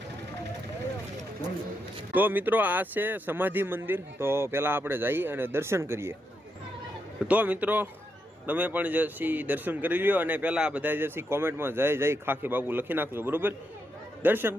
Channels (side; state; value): both; normal; correlation 0.82